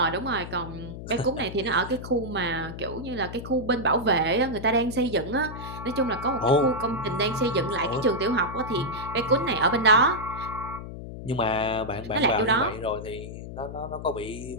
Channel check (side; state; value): left; noise; hum, 10 dB below the sound